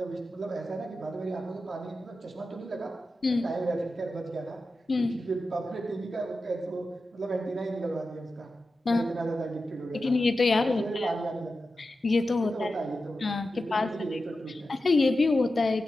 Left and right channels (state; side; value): normal; both; correlation 0.92